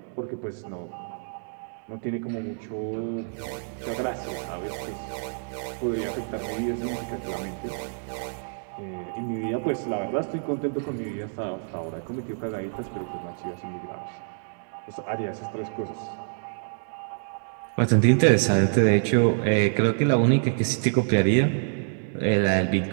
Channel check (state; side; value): silent; left; digital silence